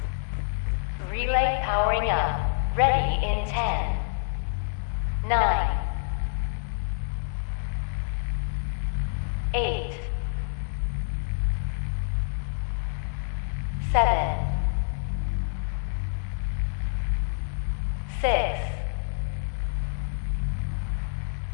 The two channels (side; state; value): right; silent; 60 dB below the other